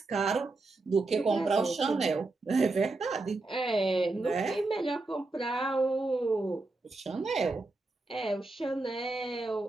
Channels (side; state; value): left; quieter; 3.2 dB